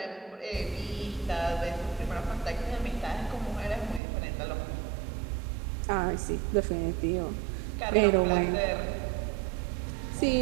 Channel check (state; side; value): drops out; left; at 4.0 s